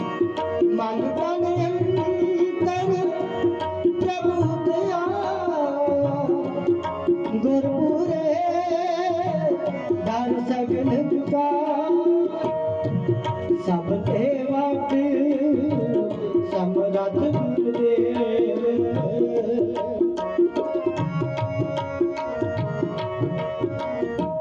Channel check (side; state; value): both; identical; correlation 1.00